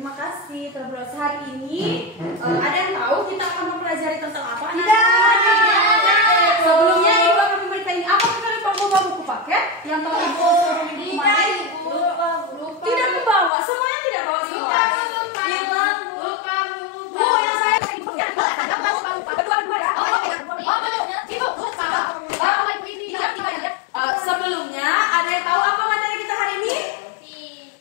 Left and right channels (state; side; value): drops out; right; at 13.5 s